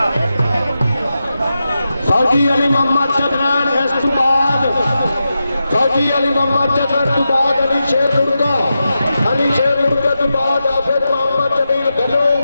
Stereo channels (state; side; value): inverted; both; correlation -0.90